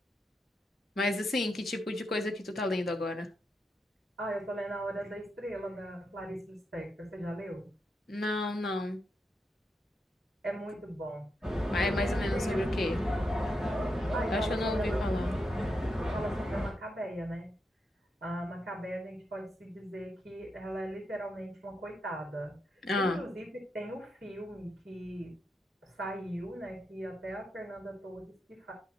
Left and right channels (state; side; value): normal; both; correlation 0.83